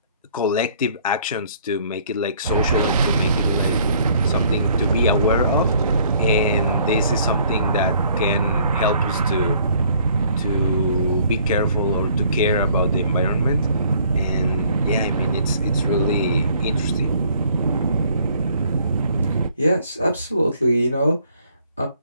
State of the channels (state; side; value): inverted; both; correlation -0.60